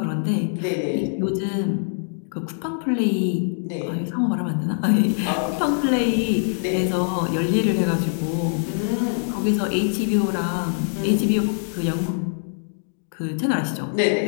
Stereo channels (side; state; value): right; silent; digital silence